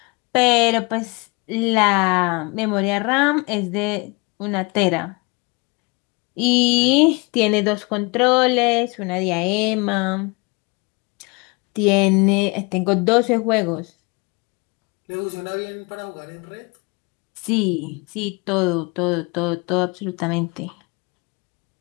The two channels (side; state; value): right; quieter; 28.3 dB